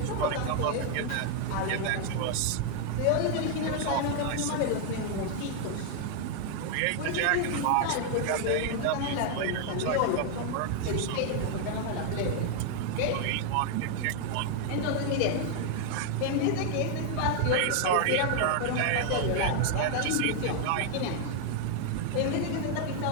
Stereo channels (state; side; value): different; both; correlation 0.00